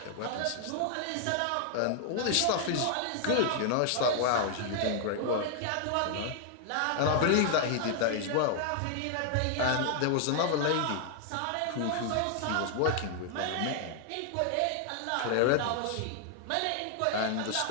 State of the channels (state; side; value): different; both; correlation 0.00